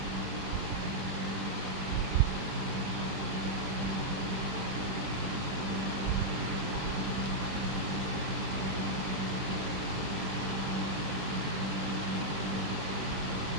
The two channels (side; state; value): left; late; 21 ms